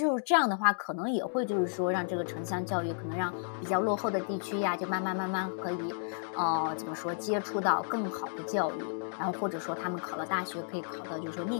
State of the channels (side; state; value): right; silent; digital silence